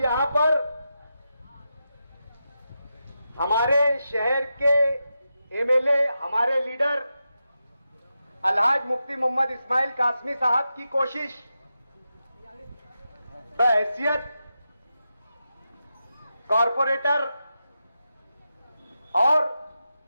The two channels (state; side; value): inverted; both; correlation -0.89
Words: यहां पर हमारे शहर के एमएलए, हमारे लीडर अलहाज मुफ्ती मोहम्मद इस्माइल कासमी साहब की कोशिश बहैसियत कॉरपोरेटर और